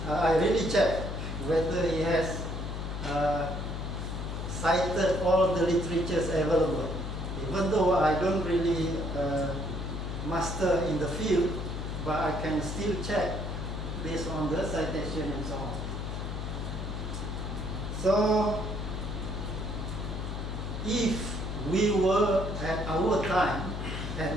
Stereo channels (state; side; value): noise; left; hum, 4 dB below the sound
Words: I really check whether he has cited all the literatures available. Even though I don't really master in the field, but I can still check based on the citation and so on. So, if we were at our time,